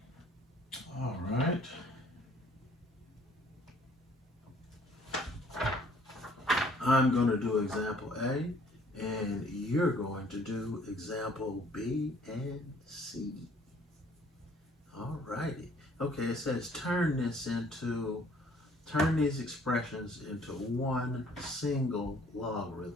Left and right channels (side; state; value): both; normal; correlation 0.58